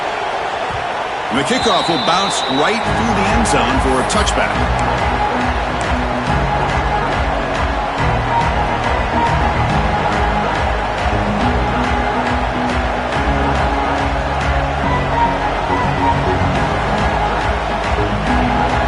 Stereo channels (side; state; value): both; identical; correlation 1.00